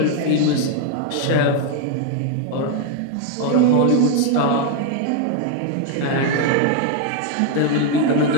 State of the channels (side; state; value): both; different; correlation 0.01